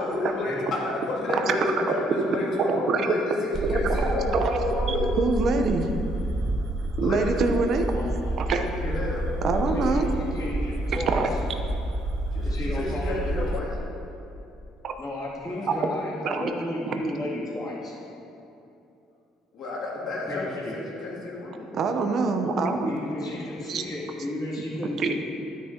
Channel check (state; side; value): normal; both; correlation 0.70